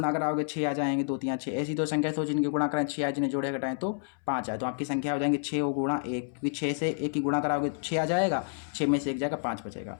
कराओगे 6 आ जाएंगे, 2 3 6, ऐसी दो संख्या तो जिनके गुणा करें 6 आए, जिन्हें जोड़े घटाएं तो 5 आए, तो आपकी संख्या हो जाएंगे 6 और गुणा 1, क्योंकि 6 से 1 की गुणा कराओगे तो 6 आ जाएगा, 6 में से 1 जाएगा 5 बचेगा।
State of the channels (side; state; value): right; silent; 58 dB below the other